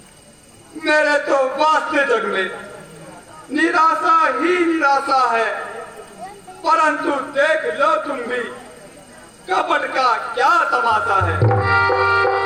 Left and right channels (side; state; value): both; identical; correlation 1.00